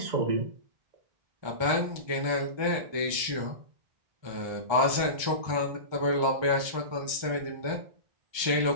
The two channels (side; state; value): left; late; 1.3 ms